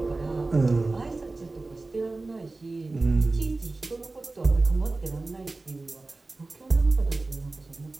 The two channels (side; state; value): left; quieter; 3.3 dB